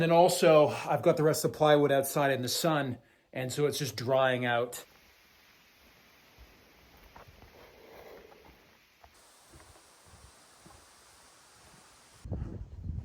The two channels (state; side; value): identical; both; correlation 1.00